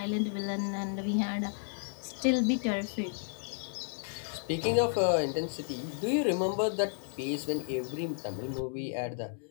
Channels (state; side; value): silent; right; digital silence